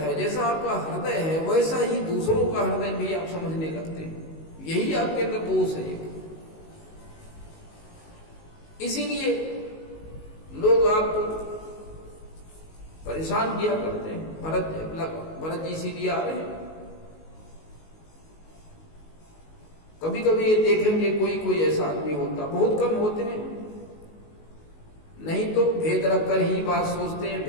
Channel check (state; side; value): late; right; 19 ms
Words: जैसा आपका हृदय है, वैसा ही दूसरों का हृदय भी आप समझने लगते हैं। यही आपके अंदर दोष है एक। इसीलिए लोग आपको परेशान किया करते हैं। भरत जी इसीलिए आ रहे हैं। कभी कभी ये देखेंगे कोई ऐसा आदमी होता, बहुत कम होते हैं, नहीं तो भेद रखकर ही बात सोचते हैं,